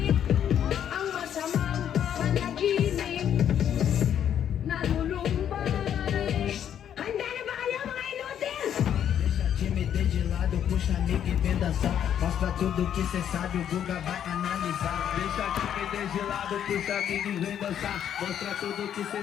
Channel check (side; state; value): right; quieter; 9.5 dB